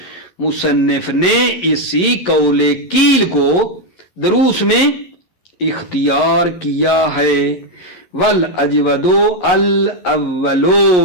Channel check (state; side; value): late; right; 11 ms